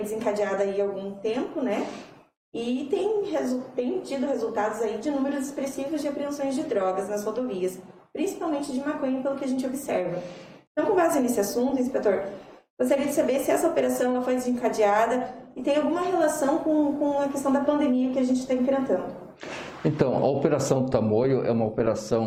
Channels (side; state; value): both; identical; correlation 1.00